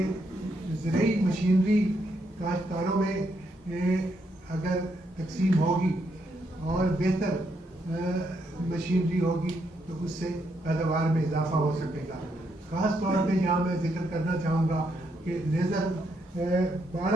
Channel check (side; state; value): both; normal; correlation 0.77